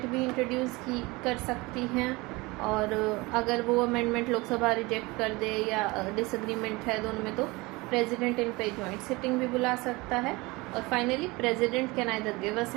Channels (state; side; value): quieter; left; 23.5 dB